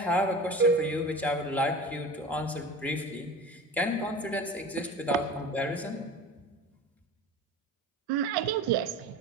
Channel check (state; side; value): normal; both; correlation 0.34